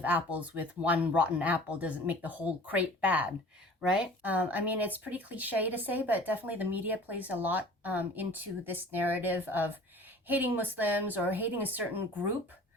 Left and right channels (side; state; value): both; normal; correlation 0.45